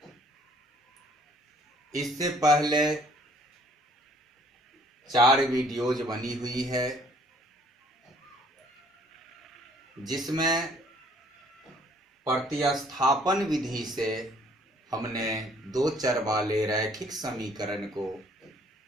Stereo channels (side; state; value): both; normal; correlation 0.60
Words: इससे पहले 4 वीडियोज बनी हुई है जिसमें प्रतिस्थापन विधि से हमने 2 चर वाले रैखिक समीकरण को